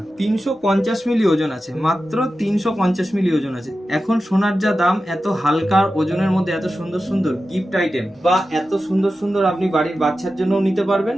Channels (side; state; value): both; normal; correlation 0.93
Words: 350 মিলি ওজন আছে, মাত্র 350 মিলি ওজন আছে। এখন সোনার যা দাম, এত হালকা ওজনের মধ্যে এত সুন্দর সুন্দর গিফট আইটেম বা এত সুন্দর সুন্দর আপনি বাড়ির বাচ্চার জন্যও নিতে পারবেন